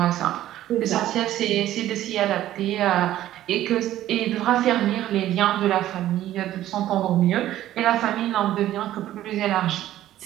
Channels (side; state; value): left; quieter; 13.4 dB